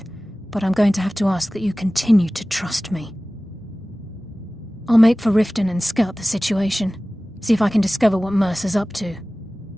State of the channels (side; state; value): both; normal; correlation 0.97